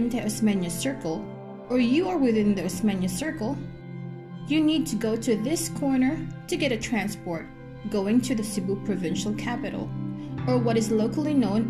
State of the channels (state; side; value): identical; both; correlation 1.00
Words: Osmeña Circle, or you are within the Osmeña Circle, you need to go to this corner to get a transport going to the Cebu Provincial Capital, or what is locally